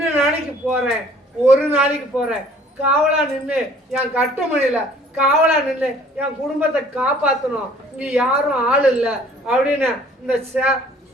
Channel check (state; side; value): normal; both; correlation 0.55